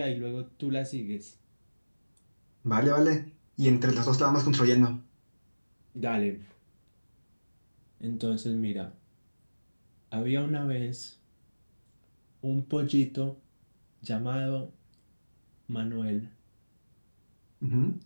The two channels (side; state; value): both; inverted; correlation -1.00